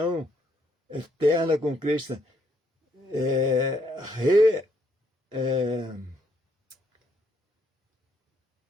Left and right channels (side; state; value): both; normal; correlation 0.71